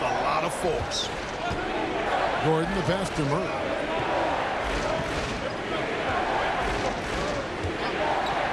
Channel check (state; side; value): identical; both; correlation 1.00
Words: lot of force. Gordon, the pass to Murray.